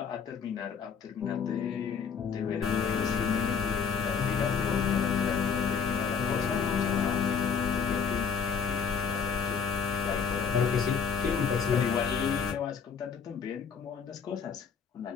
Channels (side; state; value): right; quieter; 6.3 dB